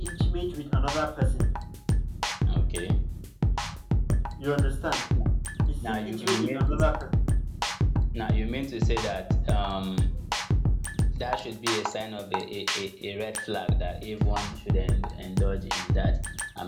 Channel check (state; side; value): identical; both; correlation 1.00